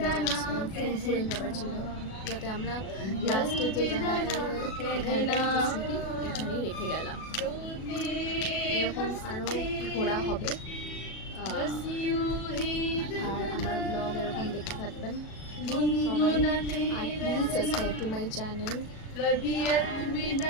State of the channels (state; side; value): late; right; 37 ms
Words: একদম ফুরফুরে সবার ছিল, যাতে আমরা লাস্টে যে জায়গাটায় এখানটায় কিছু স্মৃতি এখানেই রেখে গেলাম। এরকম আরও ঘোরা হবে, আর আমার ব্লগ এরকম দেখতে থাকবেন সবাই। আর please subscribe to my channel.